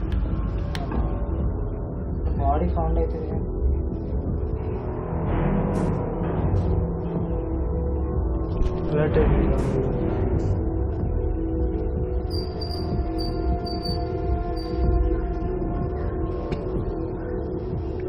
body found అవుతుంది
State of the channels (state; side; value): identical; both; correlation 1.00